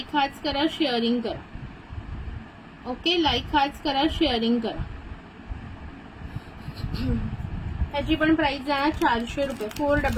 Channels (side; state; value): both; identical; correlation 1.00